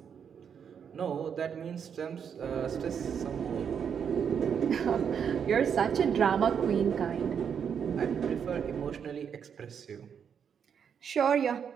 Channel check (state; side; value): quieter; left; 7.5 dB